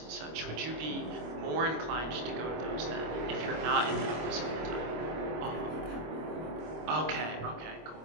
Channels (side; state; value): left; late; 25 ms